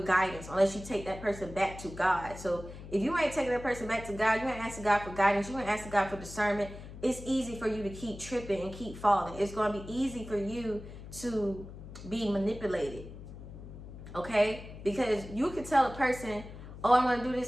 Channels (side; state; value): left; noise; hum, 13 dB below the sound